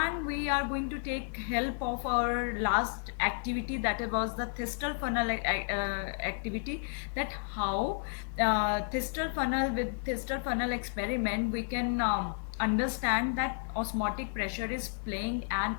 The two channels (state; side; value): silent; right; digital silence